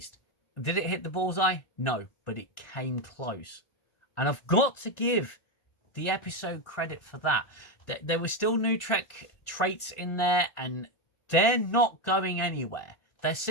Did it hit the bullseye? No, but it came close. And I've got to give the episode credit for that. There were still new Trek traits in there, and they're not going anywhere. They're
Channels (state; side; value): late; right; 1.4 ms